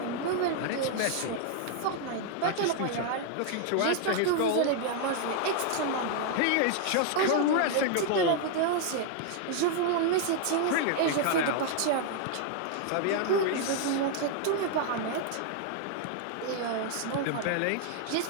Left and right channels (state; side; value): different; both; correlation 0.00